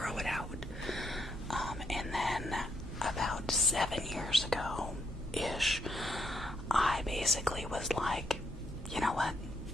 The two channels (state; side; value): normal; both; correlation 0.76